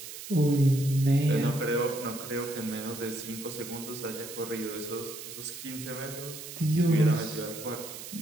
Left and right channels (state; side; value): noise; right; hiss, 11 dB below the sound